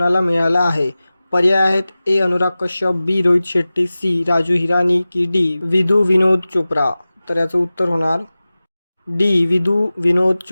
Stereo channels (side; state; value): both; inverted; correlation -0.97